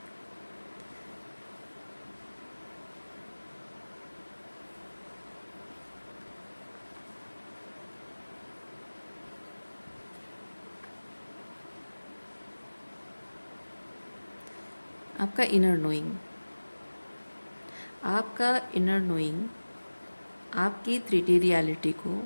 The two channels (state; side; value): inverted; both; correlation -1.00